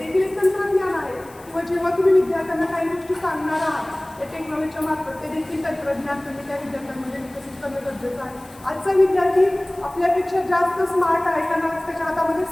एक तंत्रज्ञान आहे. किंवा जेव्हा तुम्ही विद्यार्थ्यांना काही गोष्टी सांगणार आहात त्या टेक्नॉलॉजीच्या मार्फत, ते देखील तंत्रज्ञान तुम्ही त्या विद्यार्थ्यांमध्ये विकसित करणं गरजेचं आहे. आजचा विद्यार्थी आपल्यापेक्षा जास्त स्मार्ट आहे, कारण आज त्याच्या हातामध्ये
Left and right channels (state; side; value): noise; left; hiss, 25 dB below the sound